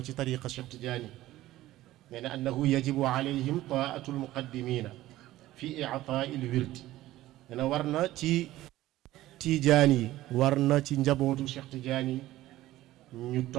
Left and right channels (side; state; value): left; quieter; 15.7 dB